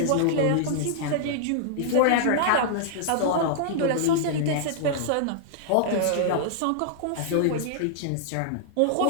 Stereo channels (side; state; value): both; different; correlation -0.01